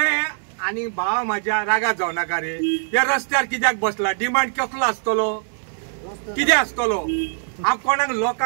आणि भाव माझ्या रागात जाऊ नका रे, या रस्त्यार कित्याक बसला, डिमांड कसलो आसतलो, कितें आसतलो. हांव कोणाक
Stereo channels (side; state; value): left; silent; digital silence